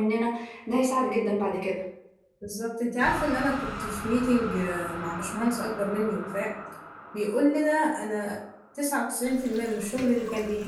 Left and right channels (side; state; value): both; identical; correlation 1.00